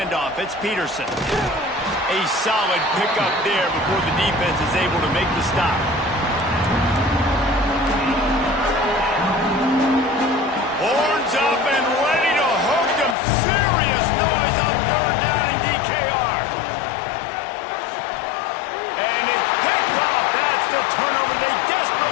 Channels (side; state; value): right; drops out; at 13.2 s